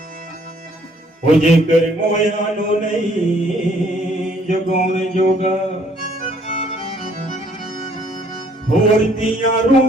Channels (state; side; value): normal; both; correlation 0.63